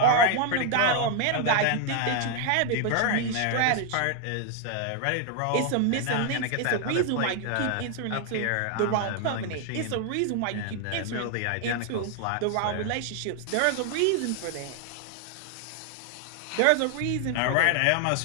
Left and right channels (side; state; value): both; different; correlation 0.00